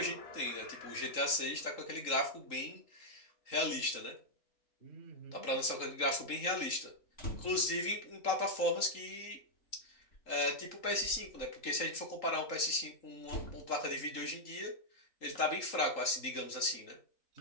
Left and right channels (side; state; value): right; late; 3.8 ms